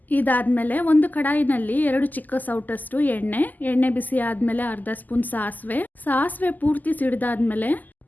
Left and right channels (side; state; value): right; late; 0.083 ms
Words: ಇದಾದಮೇಲೆ ಒಂದು ಕಡಾಯಿನಲ್ಲಿ 2 ಚಿಕ್ಕ ಸೌಟಷ್ಟು ಎಣ್ಣೆ ಬಿಸಿ ಆದಮೇಲೆ ಅರ್ಧ ಸ್ಪೂನ್ ಸಾಸಿವೆ ಪೂರ್ತಿ ಸಿಡಿದಾದ್ಮೇಲೆ